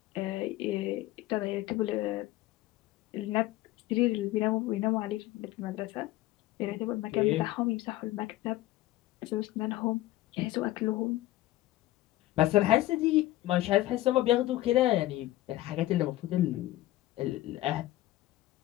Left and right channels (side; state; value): right; quieter; 16.2 dB